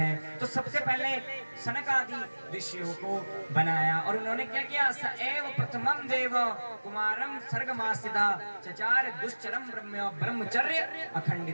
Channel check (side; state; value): both; inverted; correlation -1.00